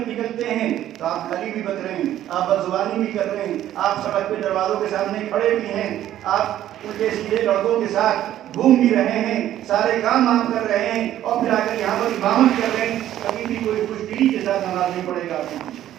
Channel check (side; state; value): left; quieter; 12.3 dB